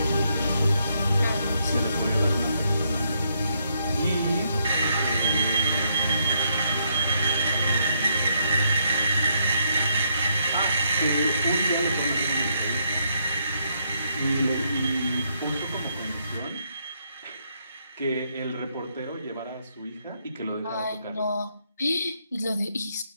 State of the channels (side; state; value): both; inverted; correlation -0.75